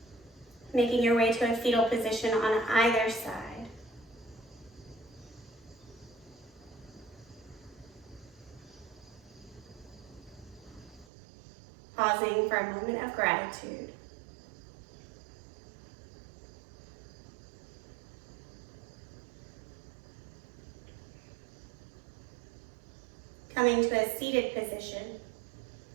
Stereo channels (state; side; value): drops out; left; at 11.1 s